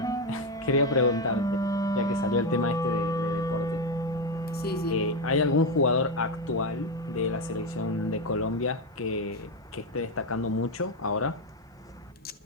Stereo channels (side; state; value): both; normal; correlation 0.10